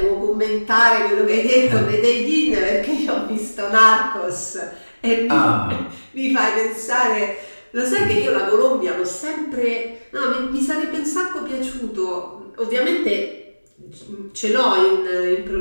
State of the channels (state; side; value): inverted; both; correlation -1.00